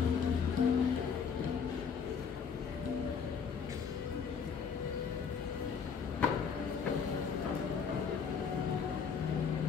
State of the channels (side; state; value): right; quieter; 6.4 dB